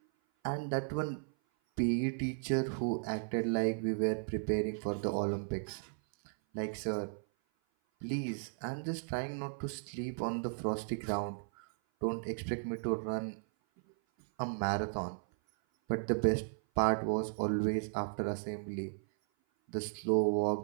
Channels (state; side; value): silent; left; 54 dB below the other